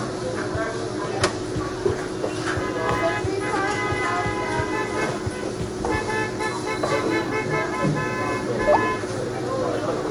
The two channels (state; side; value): identical; both; correlation 1.00